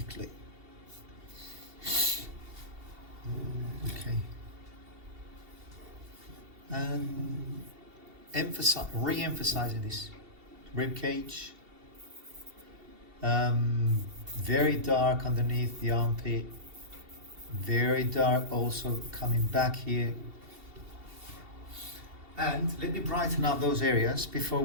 Okay. And re-emphasizing this rib cage. Very dark underneath the armpit. Very dark also coming back here. And let me brighten up those areas before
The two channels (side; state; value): left; late; 2.7 ms